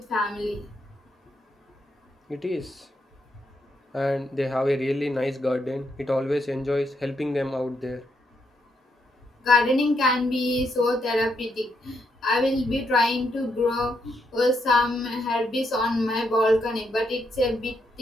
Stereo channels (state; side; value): normal; both; correlation 0.79